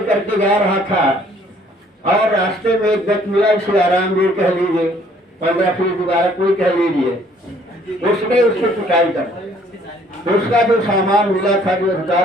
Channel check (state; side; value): normal; both; correlation 0.60